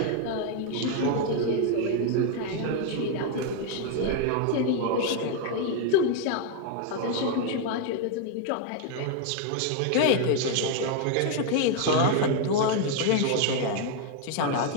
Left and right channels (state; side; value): different; both; correlation 0.01